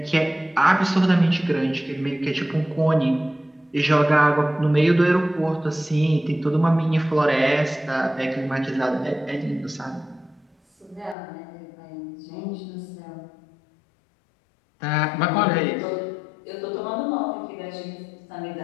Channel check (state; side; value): drops out; right; at 11.2 s